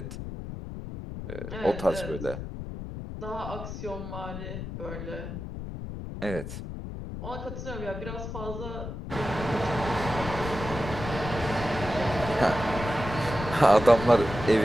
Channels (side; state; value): left; noise; rumble, 8 dB below the sound